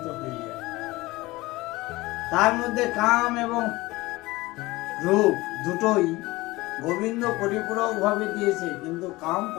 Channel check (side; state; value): right; quieter; 20.5 dB